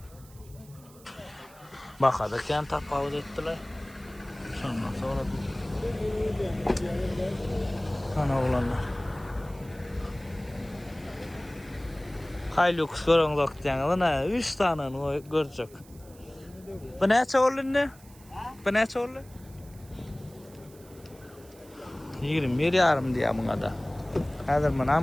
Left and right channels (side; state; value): right; noise; hiss, 24 dB below the sound